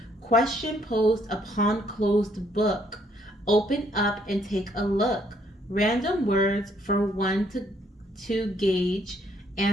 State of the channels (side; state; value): both; normal; correlation 0.68